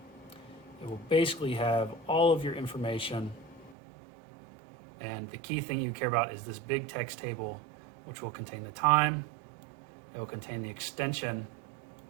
it will basically have all of your information. And the key thing you care about is this big text table, which will contain the time, it will contain the extension,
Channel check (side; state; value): left; drops out; at 3.8 s